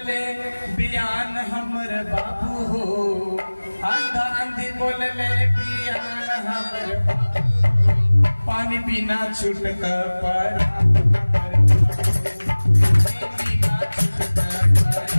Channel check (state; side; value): inverted; both; correlation -1.00